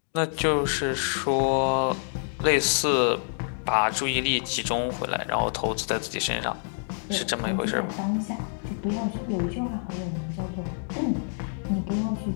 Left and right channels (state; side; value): silent; right; digital silence